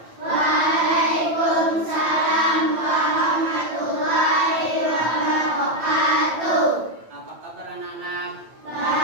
Waalaikumsalam warahmatullahi wabarakatuh. Apa kabar anak-anak?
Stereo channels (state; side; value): late; left; 9.0 ms